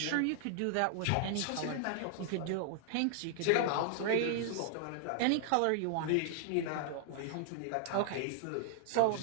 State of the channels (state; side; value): different; both; correlation 0.00